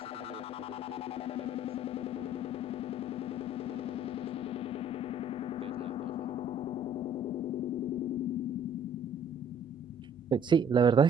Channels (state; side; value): normal; both; correlation 0.56